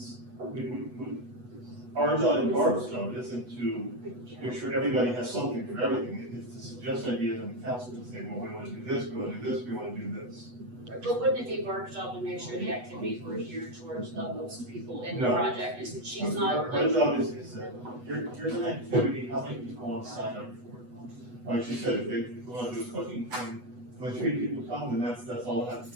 Our job and Barb's job isn't to make sure everybody has something for everything. It's to suggest ideas and the council to say, well, we wanna do this, we wanna do this, we wanna do this. But wouldn't it be Barb's job to make sure the activities were geared towards the most people in the No. project, is she's not Our like, job is that, here's an activity, how many people want to sign up for it? Like she said, if they wanna do a cooking thing, when 3 people come, then that's all that has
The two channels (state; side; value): late; left; 8.1 ms